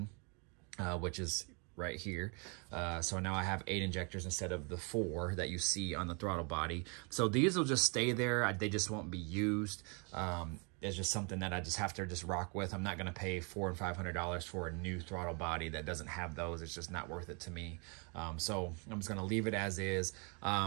which is right here. So now I have 8 injectors instead of the 4 that you see on the throttle body. So these will just stay there. They just won't be used. It's just something that I just have to just rock with. I'm not going to pay $400 and $500 for a new throttle body that doesn't have those. It's just not worth it to me. So I'm just going to leave it as is.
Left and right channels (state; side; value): quieter; left; 34.2 dB